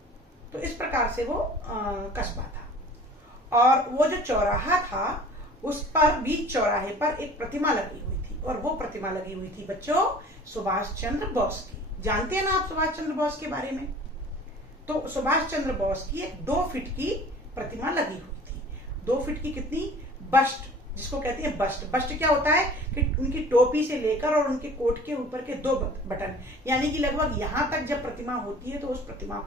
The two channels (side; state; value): both; normal; correlation 0.46